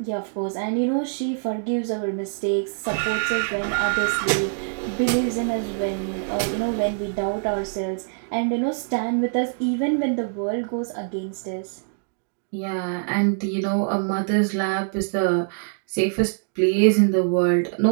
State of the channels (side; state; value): left; silent; digital silence